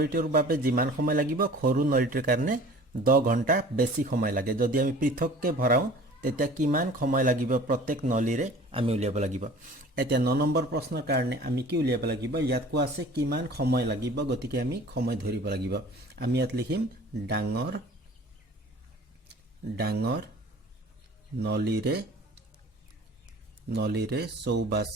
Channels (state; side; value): normal; both; correlation 0.45